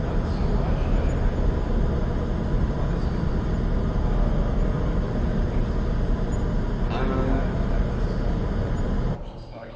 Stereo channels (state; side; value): identical; both; correlation 1.00